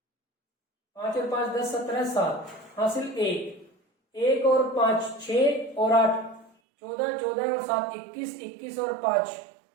5 और 5 10 17 7, हासिल 1 और 5 6 और 8 14, 14 और 7 21, 21 और 5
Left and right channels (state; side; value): drops out; left; at 6.5 s